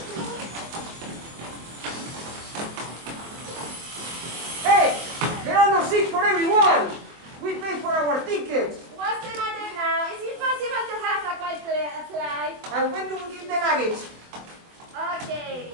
Hey, there are no seats for everyone. We paid for our tickets. What's the matter now? Is it possible to have a quiet flight? And when do we give the luggage? Okay.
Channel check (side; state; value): left; late; 23 ms